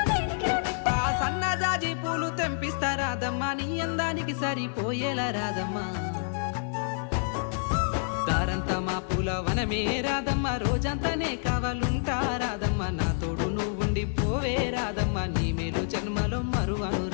సన్నజాజి పూలు తెంపిస్తా రాదమ్మ, నీ అందానికి సరిపోయేలా రాదమ్మ. దారంతా మా పూలవనమే రాదమ్మ, రోజంతానే కావాలుంటా రాదమ్మ, నా తోడు నువ్వుండి పోవే రాదమ్మ, నీ మేలు జన్మలో మరువను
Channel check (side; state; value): right; silent; digital silence